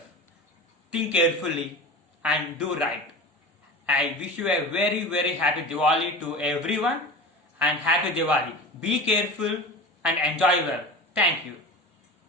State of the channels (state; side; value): normal; both; correlation 0.32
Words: Think carefully and do right. I wish you a very, very happy Diwali to everyone, and happy Diwali. Be careful and enjoy well. Thank you.